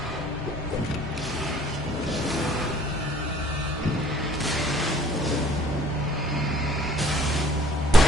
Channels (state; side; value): normal; both; correlation 0.55